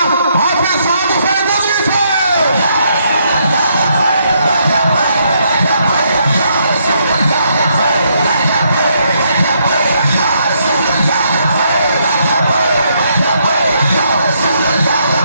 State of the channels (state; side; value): inverted; both; correlation -0.74